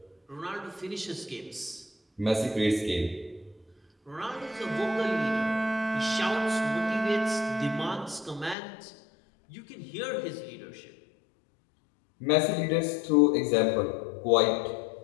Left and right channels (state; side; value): drops out; right; at 8.6 s